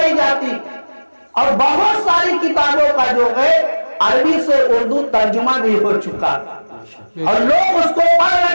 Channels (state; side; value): inverted; both; correlation -1.00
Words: جاتی، اور بہت ساری کتابوں کا جو ہے عربی سے اردو ترجمہ بھی ہو چکا، اور لوگ اس کو پڑھ